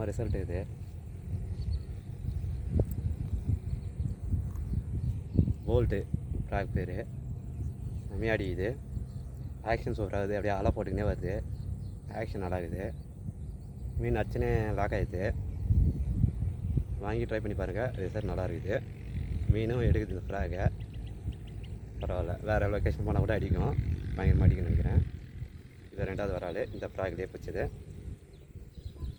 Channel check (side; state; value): both; identical; correlation 1.00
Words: ரிசல்ட் இது. போல்ட்டு ஃப்ராக் பேர். செம்மையாடி இது. ஆக்ஷன் சூப்பராகுது, அப்படியே அலை போட்டுக்கினே வருது. ஆக்ஷன் நல்லா இருக்குது. மீன் அடிச்சுனே லாக் ஆகிடுது. வாங்கி ட்ரை பண்ணி பாருங்கள், ரிசல்ட் நல்லா இருக்குது. மீனும் எடுக்குது இந்த ஃப்ராகை. பரவாயில்ல, வேறு லொக்கேஷன் போனால் கூட அடிக்கும். பயங்கரமாக அடிக்கணும்னு நினைக்கிறேன். இது ரெண்டாவது வரால் இந்த ஃப்ராக்லேயே பிடிச்சது.